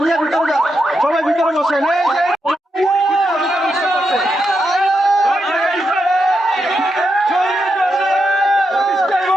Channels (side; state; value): both; normal; correlation 0.84